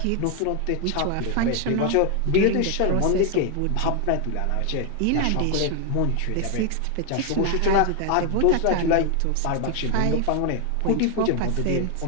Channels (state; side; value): different; both; correlation 0.00